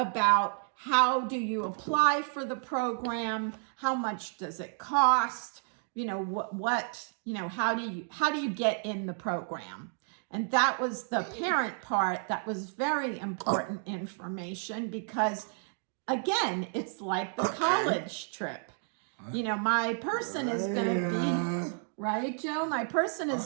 how do you apply for the program, how much does it cost, how do you get in the program? And that was the parent part. That was very important information because, again, it's like the college trip. My person is going to be, right, Joe? My person is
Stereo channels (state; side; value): silent; left; 57 dB below the other